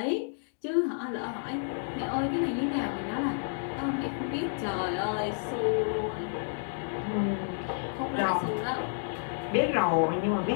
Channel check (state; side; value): silent; right; digital silence